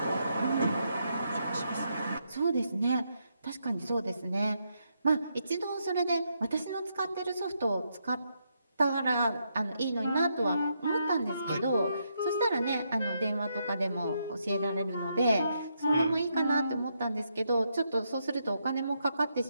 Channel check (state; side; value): inverted; both; correlation -0.79